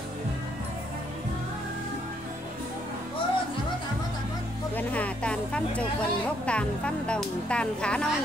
Vườn hà tàn phân trục vườn gốc tàn phân đồng tàn khá non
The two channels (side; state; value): both; normal; correlation 0.71